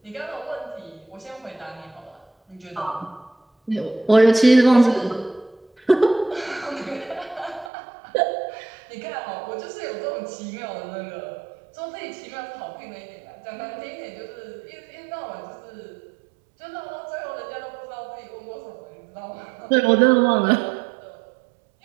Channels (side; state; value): left; drops out; at 7.7 s